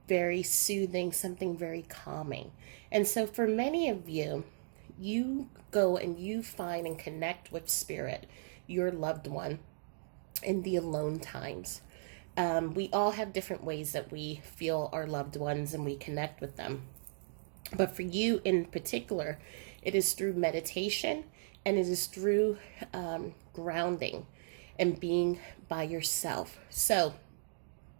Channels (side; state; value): left; silent; digital silence